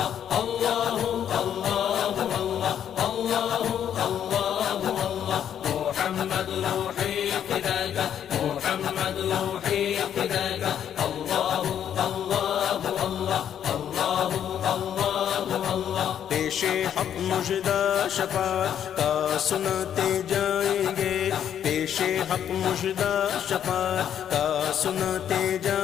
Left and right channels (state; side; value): quieter; right; 9.5 dB